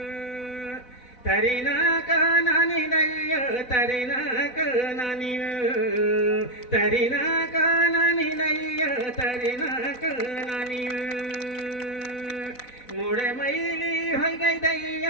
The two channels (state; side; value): late; right; 4.0 ms